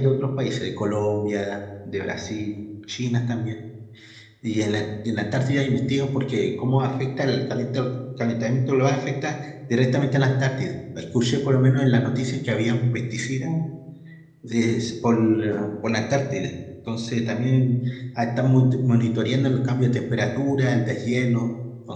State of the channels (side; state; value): both; identical; correlation 1.00